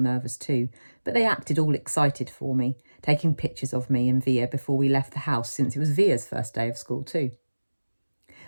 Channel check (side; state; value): both; inverted; correlation -1.00